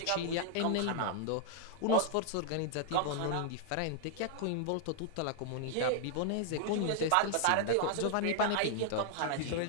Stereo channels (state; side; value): different; both; correlation 0.00